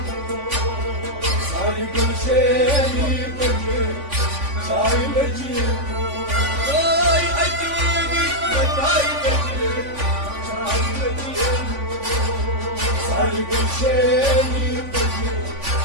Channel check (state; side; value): late; left; 3.5 ms